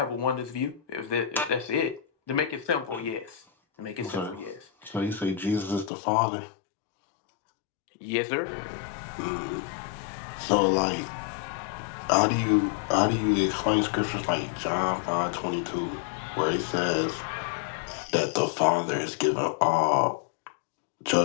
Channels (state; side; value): drops out; right; at 5.9 s